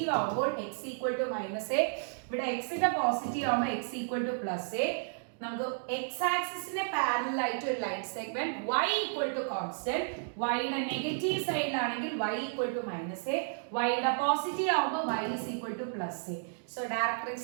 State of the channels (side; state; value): left; silent; digital silence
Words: ആവുമ്പോൾ x ഈക്വൽ ടു -a, ഇവിടെ x ന്റെ പോസിറ്റീവ് ആവുമ്പോൾ x ഈക്വൽ ടു +a. നമുക്ക് x ആക്സിസിന്റെ പാരലൽ ആയിട്ട് ഒരു line segment y equal to constant, y യുടെ നെഗറ്റീവ് സൈഡിലാണെങ്കിൽ y equal to -a, y യുടെ പോസിറ്റീവ് ആവുമ്പോൾ y is equal to +a. So